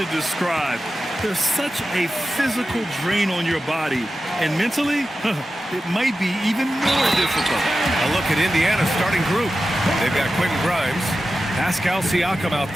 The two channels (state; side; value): normal; both; correlation 0.93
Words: describe. There's such a physical drain on your body, and mentally, it might be even more difficult. A look at Indiana's starting group. They've got Quentin Grimes, Pascal Siakam out